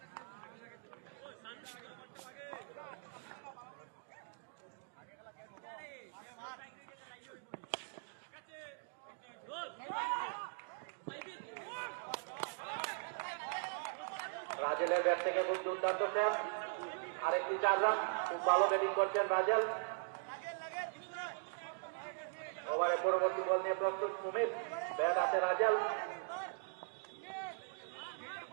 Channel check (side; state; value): left; silent; digital silence